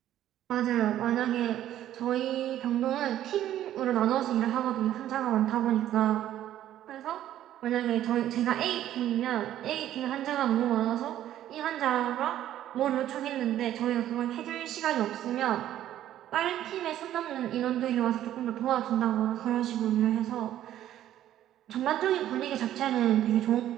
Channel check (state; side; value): quieter; left; 12.2 dB